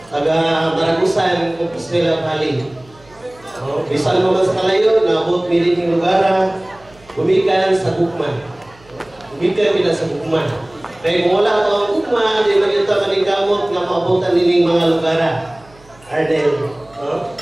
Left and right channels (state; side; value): noise; right; hum, 27 dB below the sound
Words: taga Maragusan, Compostela Valley. Bisan mo man sa kalayo, naabot miling lugar, gumikan sa Gugma. Gumikan kita sa Gugma. Kaya kung wala ito ang Gugma, di magkita maningkamot nga maabutan nining mga lugar. Arnel.